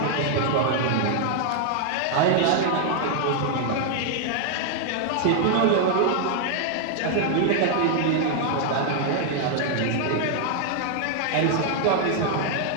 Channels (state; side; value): different; both; correlation 0.00